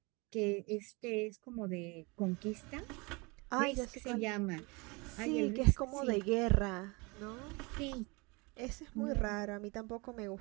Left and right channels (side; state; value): left; quieter; 27.3 dB